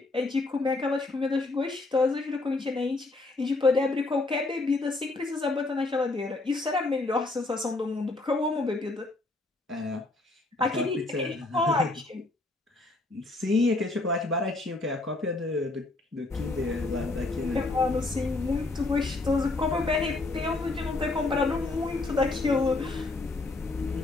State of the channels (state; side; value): quieter; right; 3.1 dB